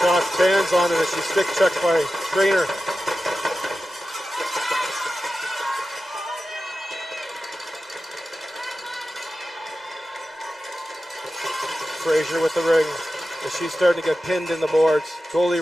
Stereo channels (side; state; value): both; normal; correlation 0.93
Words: stands on it as she's stick checked by Trainer. Frazier with the ring as she's starting to get pinned in the boards. Goalie